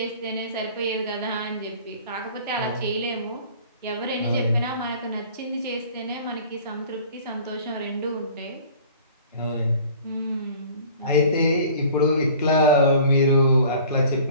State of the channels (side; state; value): both; inverted; correlation -0.47